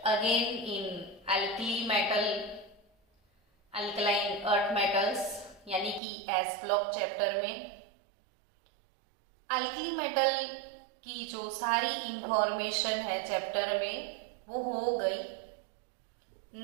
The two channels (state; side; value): drops out; left; at 6.0 s